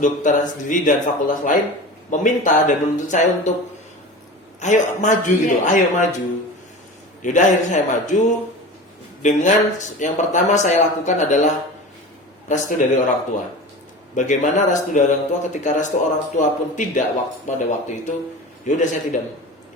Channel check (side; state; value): both; normal; correlation 0.33